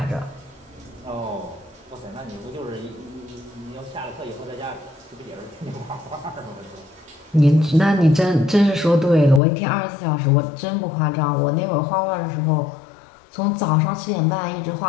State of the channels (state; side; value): drops out; right; at 9.4 s